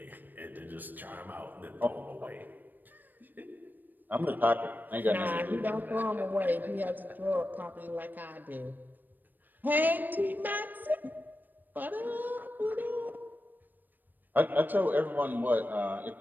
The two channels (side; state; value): left; late; 0.089 ms